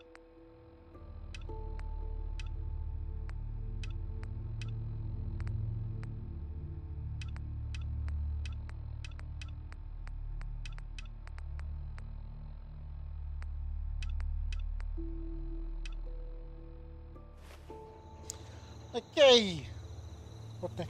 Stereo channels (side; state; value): both; identical; correlation 1.00